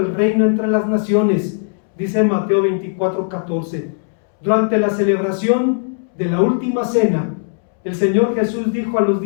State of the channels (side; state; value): right; silent; 67 dB below the other